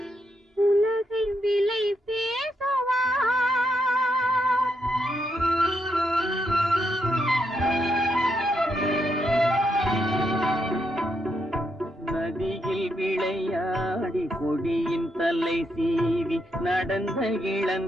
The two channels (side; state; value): both; normal; correlation 0.79